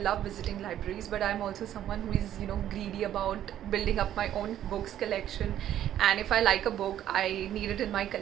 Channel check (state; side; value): quieter; left; 11.5 dB